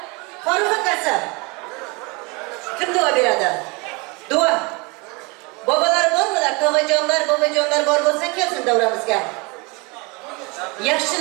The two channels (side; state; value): left; quieter; 28.3 dB